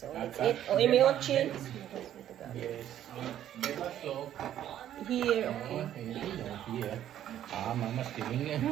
let's eat. Oh, imiochi. Yes. Beba so. Here, Oh, okay. here. Ah, mama's giving it.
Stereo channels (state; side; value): quieter; left; 11.3 dB